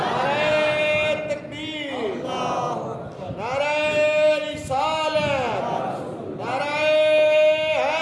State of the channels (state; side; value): identical; both; correlation 1.00